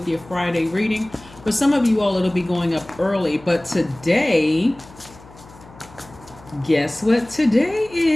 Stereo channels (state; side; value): noise; left; hum, 22 dB below the sound